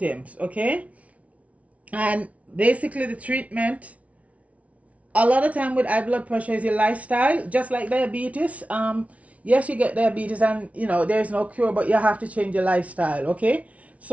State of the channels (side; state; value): left; late; 0.066 ms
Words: okay? And basically the treatment, a lot of time with high blood pressure is your lifestyle, just like diabetes. Yes, you get diabetes and, you know, there's no cure, but you have to change your lifestyle, okay?